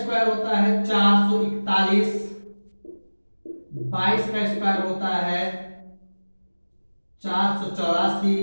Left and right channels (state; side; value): inverted; both; correlation -1.00